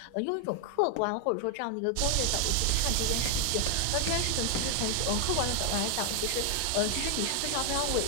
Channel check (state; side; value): different; both; correlation 0.00